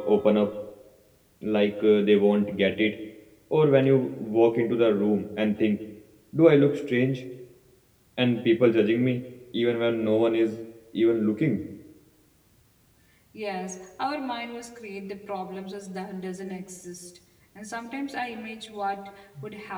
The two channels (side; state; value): both; identical; correlation 1.00